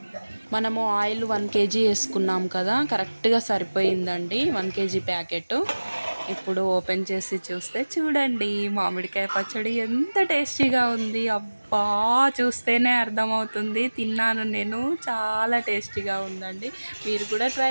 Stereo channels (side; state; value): both; inverted; correlation -1.00